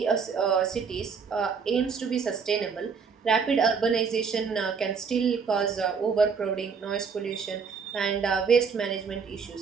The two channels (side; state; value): left; quieter; 5.8 dB